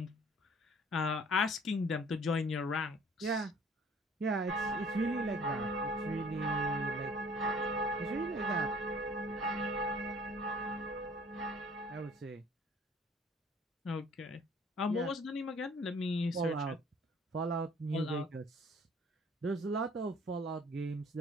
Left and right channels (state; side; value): normal; both; correlation 0.54